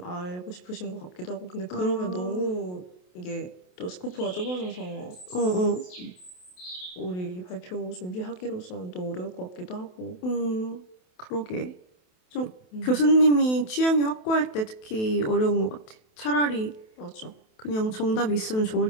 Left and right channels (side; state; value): right; late; 28 ms